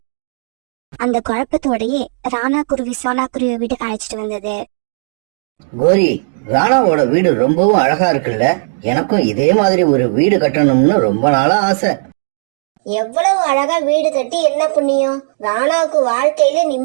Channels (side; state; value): left; silent; digital silence